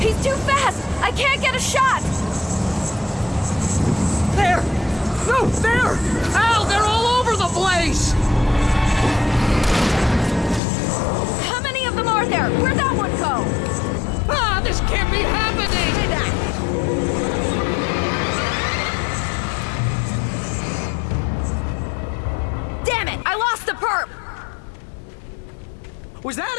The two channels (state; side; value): drops out; right; at 10.6 s